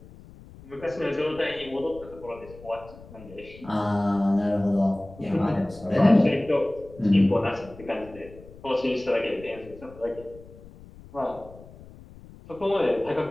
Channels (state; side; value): noise; left; rumble, 19 dB below the sound